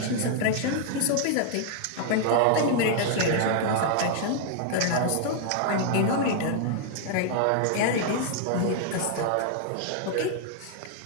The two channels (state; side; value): different; both; correlation 0.00